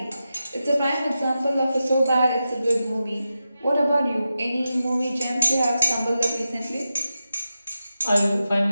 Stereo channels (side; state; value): both; inverted; correlation -0.90